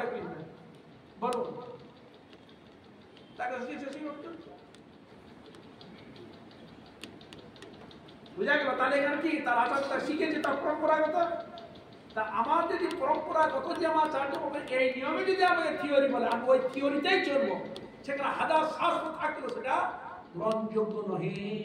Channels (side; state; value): both; identical; correlation 1.00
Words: কৃষ্ণ। বলো তাকে শিখিয়েছে সেইভাবে চলছে। বুঝা গেল? তাহলে এখানে কি তার আচার্য তার শিখেছে, তার পরম্পরাগত। তা আমার যদি পরম্পরাগত যে আমার আচার্য এই নিয়মে যদি আমাকে থিওরি বলে, আমি ওই থিওরিতেই চলবো, সেখানে হাজার শাস্ত্র থাকলেও সেটা গ্রহণযোগ্য নহে।